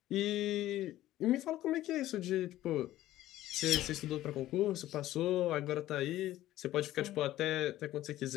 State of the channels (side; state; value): right; quieter; 14.6 dB